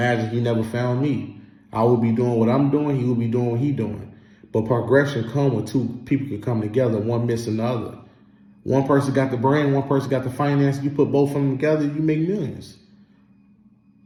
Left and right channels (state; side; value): identical; both; correlation 1.00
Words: he never found me. I would be doing what I'm doing, he would be doing what he's doing. But progression comes when two people can come together, one missing the other. One person got the brain, one person got the finance. You put both of them together, you make millions.